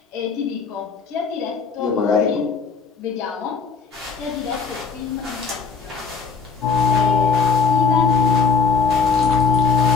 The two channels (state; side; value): quieter; right; 5.2 dB